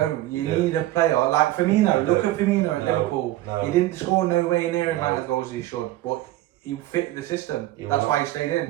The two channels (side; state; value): left; quieter; 15.8 dB